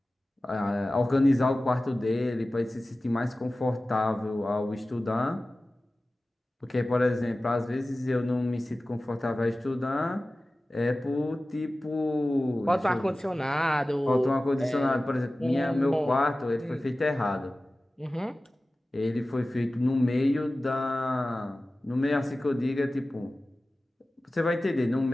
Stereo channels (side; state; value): both; normal; correlation 0.96